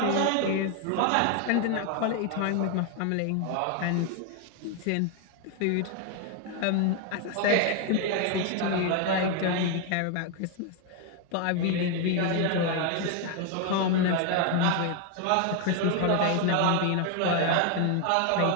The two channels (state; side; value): different; both; correlation 0.01